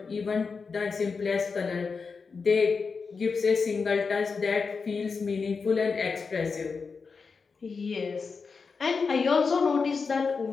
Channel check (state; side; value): quieter; right; 5.0 dB